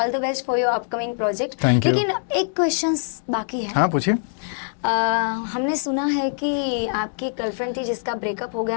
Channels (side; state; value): right; silent; digital silence